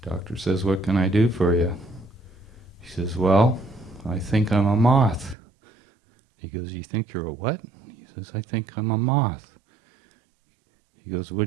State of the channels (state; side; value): drops out; left; at 5.4 s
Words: Doctor says, what can I do for you? He says, well, I think I'm a moth. He goes, you think you're a what? He says, I think I'm a moth. He goes,